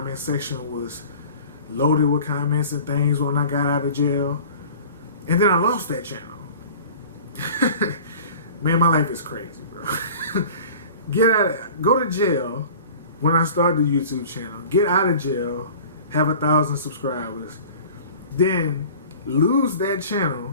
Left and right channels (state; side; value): inverted; both; correlation -0.43